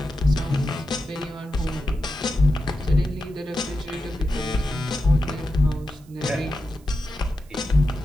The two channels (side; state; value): right; noise; hiss, 29 dB below the sound